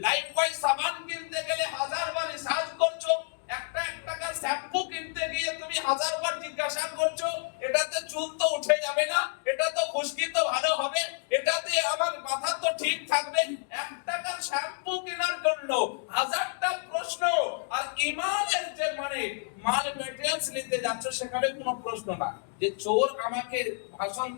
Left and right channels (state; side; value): silent; right; 58 dB below the other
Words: লাইফবয় সাবান কিনতে গেলে 1000 বার রিসার্চ করছো, একটা টাকার শ্যাম্পু কিনতে গিয়ে তুমি 1000 বার জিজ্ঞাসা করছো এটাতে চুল তো উঠে যাবে না, এটা তো খুশকি তো ভালো হবে, এটাতে আমার মাথা তো ঠিক থাকবে, 1 টাকার শ্যাম্পু কেনার জন্য 1000টা প্রশ্ন। আর ঈমানের যে মানে মাল মেটেরিয়ালস নিতে যাচ্ছ সেখানে কোনো প্রশ্ন না যে চোর আমাকে ভাষণ